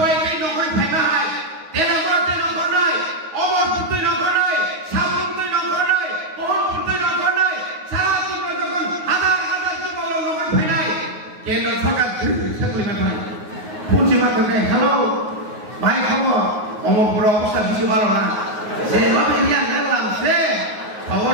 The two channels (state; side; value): late; left; 9.5 ms